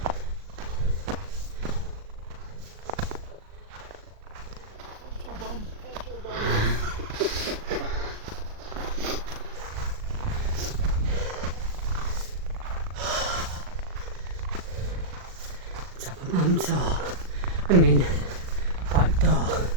Top of Mam Tor. I mean, back door.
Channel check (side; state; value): left; late; 38 ms